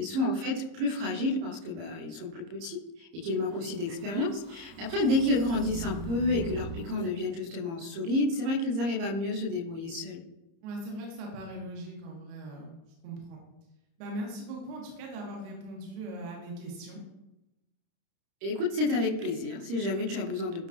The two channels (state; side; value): late; left; 30 ms